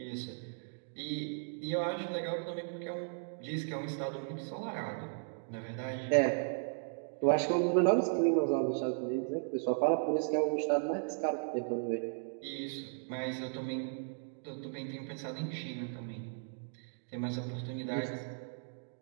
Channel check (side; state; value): left; silent; digital silence